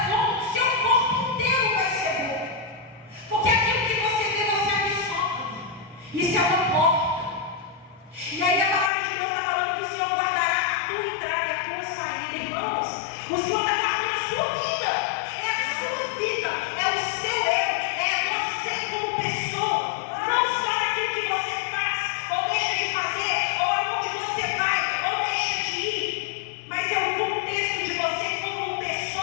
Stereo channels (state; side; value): drops out; right; at 8.9 s